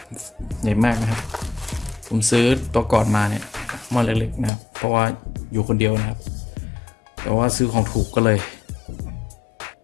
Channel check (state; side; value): drops out; right; at 4.5 s